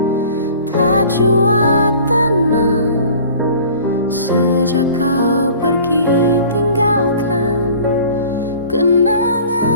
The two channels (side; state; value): both; inverted; correlation -0.47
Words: tak jua tenang sejak kau pergi tinggalkan kenangan.